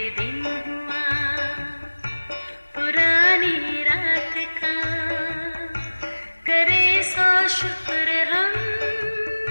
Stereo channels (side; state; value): both; inverted; correlation -1.00